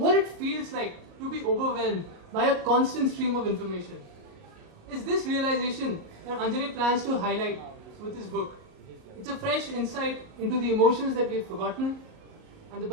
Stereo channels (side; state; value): left; late; 38 ms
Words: it feels like to be overwhelmed by a constant stream of information. Is this realization that Anjali plans to highlight with his book. It's a fresh insight into the emotions that we've forgotten and the